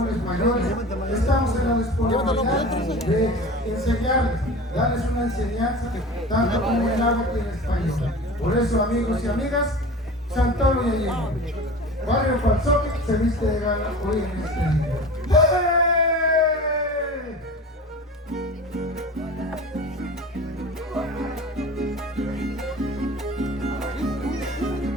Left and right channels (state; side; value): normal; both; correlation 0.36